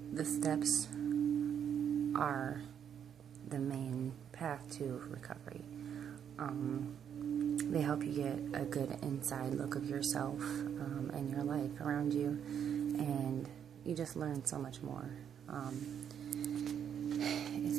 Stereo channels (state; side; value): quieter; left; 8.5 dB